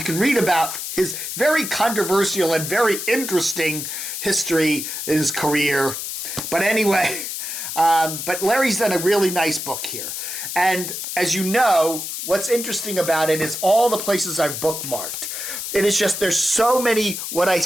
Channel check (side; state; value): left; noise; hiss, 5 dB below the sound